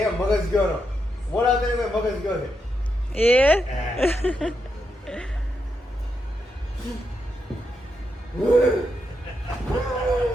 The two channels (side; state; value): both; normal; correlation 0.83